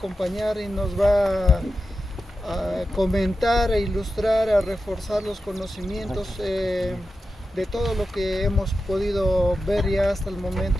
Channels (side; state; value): both; normal; correlation 0.91